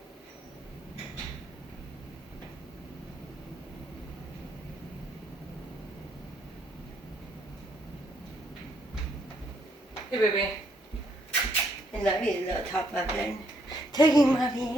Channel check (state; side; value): normal; both; correlation 0.72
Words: Hey, baby. I love you, little top muffin. Taking